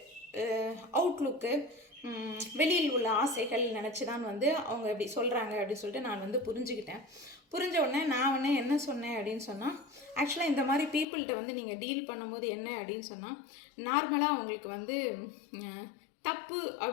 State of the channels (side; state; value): right; drops out; at 11.1 s